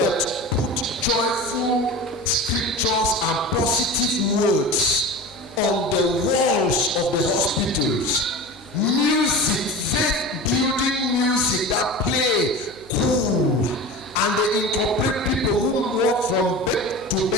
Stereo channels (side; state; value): right; noise; hum, 26 dB below the sound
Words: put joyful scriptures and positive words on the walls of the hospitals, music, faith building music that play cool, and they incorporate people who walk from bed to